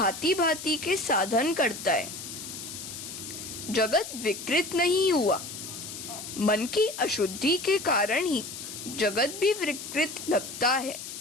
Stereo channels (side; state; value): left; noise; hiss, 9 dB below the sound